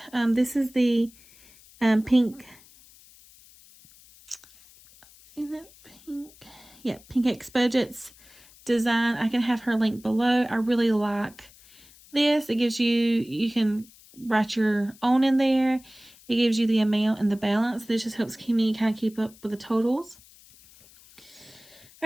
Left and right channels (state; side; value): noise; left; hiss, 25 dB below the sound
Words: This is the pink. Is that pink? Yeah, Pink X Budgets design. I can have her link below. I really like this. It gives you can write your own in there. It gives you the amount and the balance. This just helps me kind of keep up with the totals.